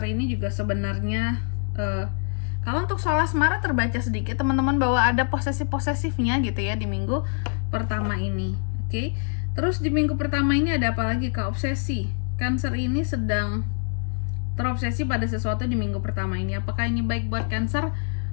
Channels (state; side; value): silent; right; digital silence